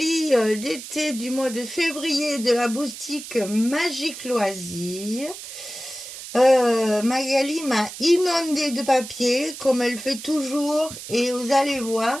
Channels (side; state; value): right; noise; hiss, 12 dB below the sound